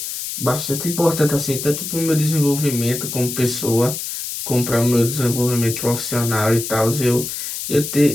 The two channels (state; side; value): noise; left; hiss, 6 dB below the sound